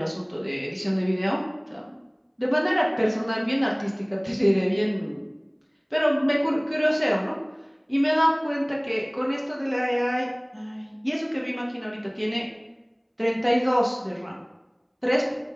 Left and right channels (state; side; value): identical; both; correlation 1.00